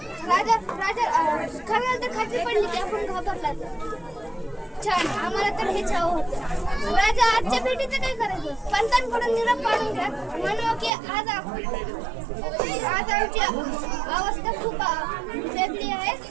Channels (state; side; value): drops out; left; at 10.9 s